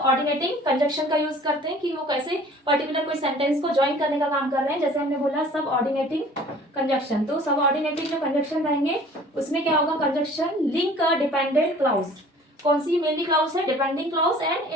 ऑर्डिनेटिंग कंजक्शन का यूज करते हैं कि वो कैसे पर्टिकुलर कोई सेंटेंस को ज्वाइन करने का काम कर रहे हैं। जैसे हमने बोला सब ऑर्डिनेटिंग कंजक्शन, तो सब ऑर्डिनेटिंग जो कंजक्शन रहेंगे उसमें क्या होगा, conjunction link a dependent clause. कौन सी मेनली क्लाउज है, depending clause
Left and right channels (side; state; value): both; normal; correlation 0.49